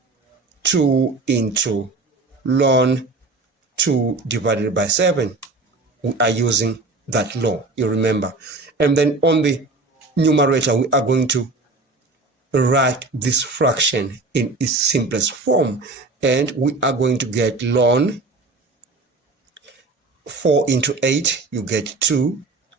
2 into ln 2 divided by 7. We are using that law, you remember. And then on the numerator, we are going to write this fraction in its simplest form, and we are going to get ln 4 into 8, you get 2.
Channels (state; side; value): quieter; left; 3.5 dB